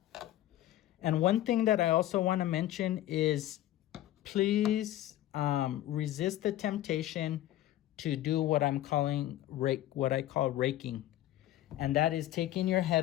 And one thing that I also want to mention is please resist the temptation to do what I'm calling what I call raking. And that is taking your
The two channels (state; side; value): quieter; right; 13.9 dB